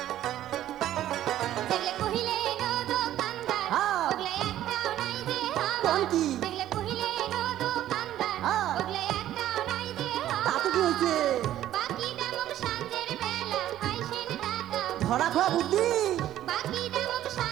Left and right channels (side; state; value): left; quieter; 12.7 dB